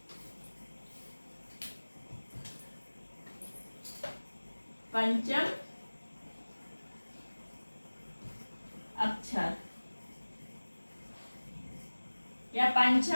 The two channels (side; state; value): both; inverted; correlation -1.00